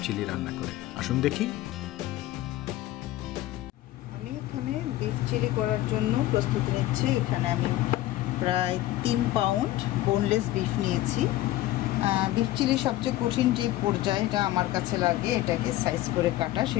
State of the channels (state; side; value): quieter; right; 15.6 dB